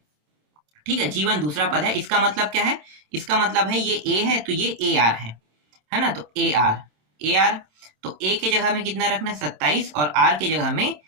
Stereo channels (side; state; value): left; late; 27 ms